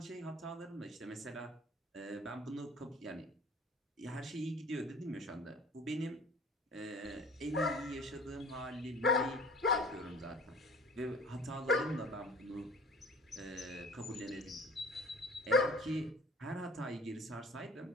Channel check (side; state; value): both; normal; correlation 0.47